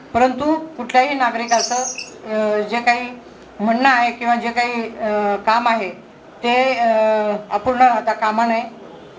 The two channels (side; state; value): both; identical; correlation 1.00